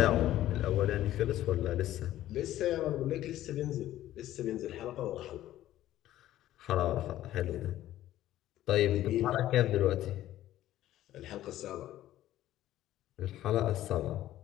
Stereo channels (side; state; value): right; quieter; 13.7 dB